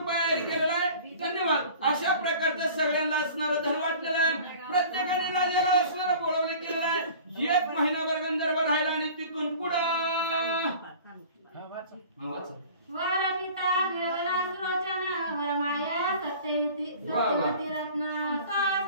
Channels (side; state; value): both; inverted; correlation -0.44